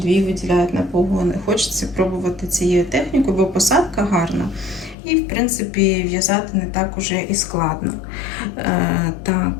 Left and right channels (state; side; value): drops out; right; at 5.0 s